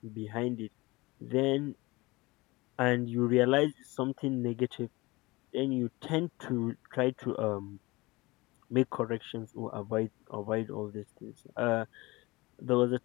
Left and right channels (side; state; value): right; quieter; 22.4 dB